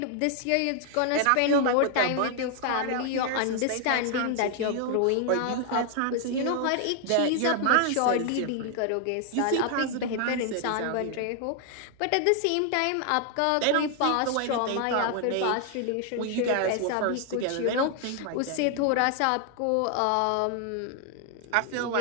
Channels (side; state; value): both; different; correlation 0.00